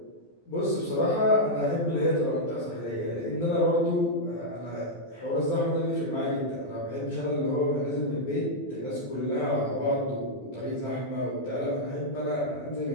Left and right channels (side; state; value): right; late; 12 ms